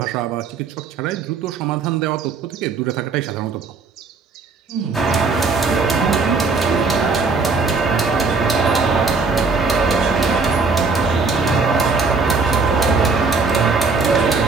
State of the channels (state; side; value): quieter; left; 4.4 dB